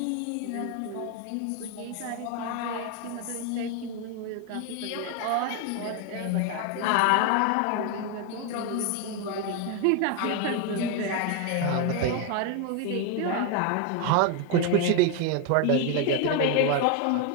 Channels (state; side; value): different; both; correlation 0.01